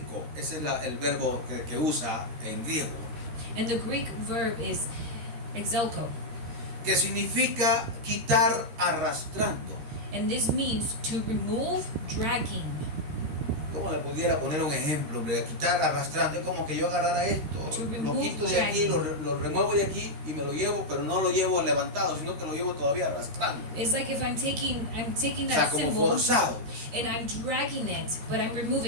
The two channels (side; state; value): left; late; 13 ms